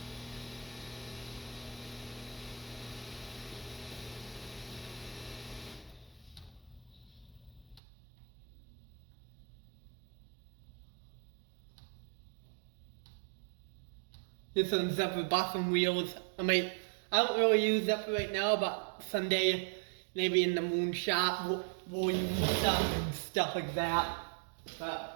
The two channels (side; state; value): left; drops out; at 7.8 s